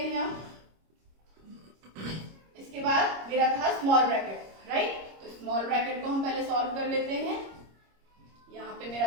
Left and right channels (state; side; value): late; left; 25 ms